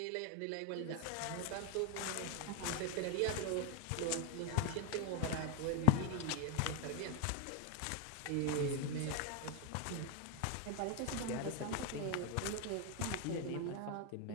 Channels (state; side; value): different; both; correlation 0.00